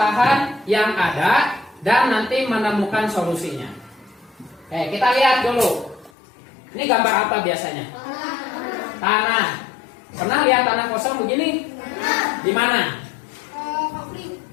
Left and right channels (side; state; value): right; drops out; at 6.1 s